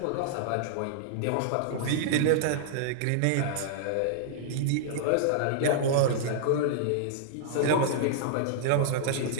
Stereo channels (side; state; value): both; different; correlation -0.01